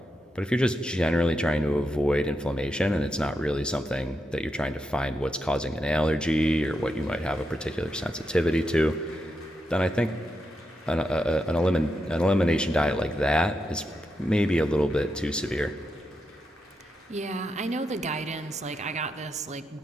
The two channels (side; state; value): both; normal; correlation 0.85